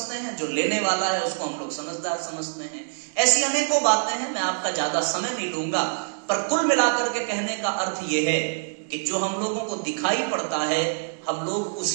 हैं, जो लेने वाला है उसको हम लोग समझदार समझते हैं। ऐसी अनेकों बातें हैं, मैं आपका ज्यादा समय नहीं लूंगा। पर कुल मिलाकर के कहने का अर्थ यह है कि जो हम लोगों को दिखाई पड़ता है हम लोग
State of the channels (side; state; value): left; silent; digital silence